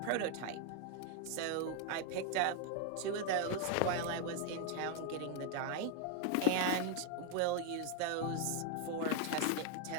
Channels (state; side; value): different; both; correlation 0.01